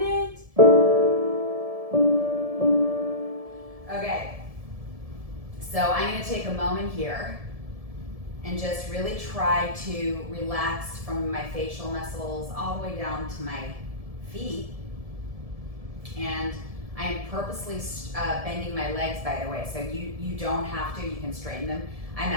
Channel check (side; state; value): left; late; 1.7 ms